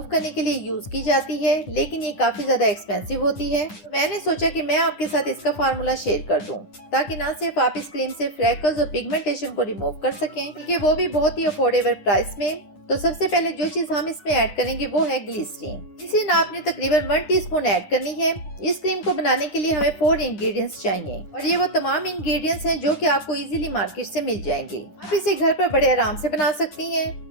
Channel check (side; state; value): right; late; 10 ms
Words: करने के लिए यूज की जाती है, लेकिन ये काफी ज्यादा एक्सपेंसिव होती है। तो मैंने सोचा कि मैं आपके साथ इसका फार्मूला शेयर कर दूं, ताकि ना सिर्फ आप इस क्रीम से फ्रैकल्स और पिगमेंटेशन को रिमूव कर सकें, बल्कि वो भी बहुत ही अफोर्डेबल प्राइस में। तो सबसे पहले जो चीज हम इसमें ऐड करेंगे वो है ग्लिसरीन। ग्लिसरीन आपने तकरीबन 1 टीस्पून ऐड करनी है। इस क्रीम को बनाने के लिए हमें 4 इंग्रेडिएंट्स चाहिए और ये वो तमाम इंग्रेडिएंट्स हैं जो कि आपको इजीली मार्केट से मिल जाएंगे। आप इसे घर पर बड़े आराम से बना सकती हैं।